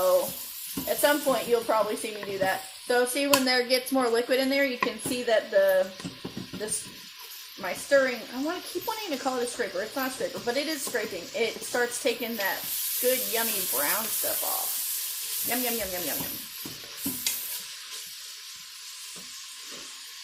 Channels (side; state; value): both; identical; correlation 1.00